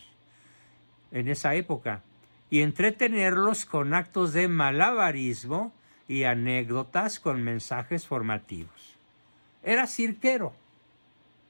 en esa época, y entretenerlos con actos de malabarismo y anécdotas con mensajes formativos. Era cirquero,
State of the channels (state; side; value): inverted; both; correlation -1.00